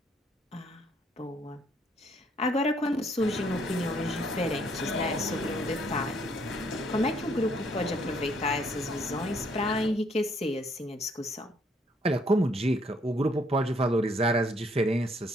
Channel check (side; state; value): both; normal; correlation 0.67